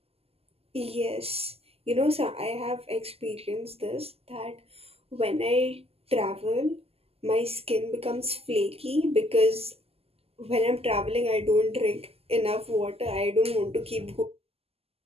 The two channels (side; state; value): left; late; 0.29 ms